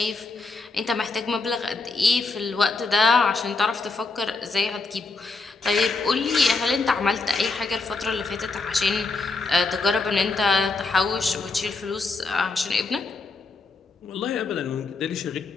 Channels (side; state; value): right; quieter; 3.8 dB